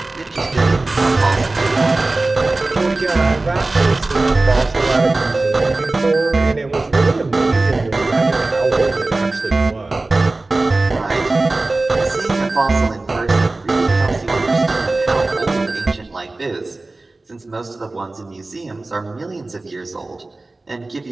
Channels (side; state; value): left; quieter; 3.1 dB